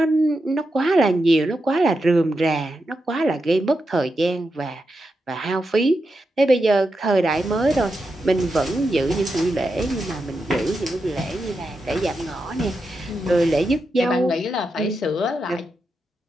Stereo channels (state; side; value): normal; both; correlation 0.87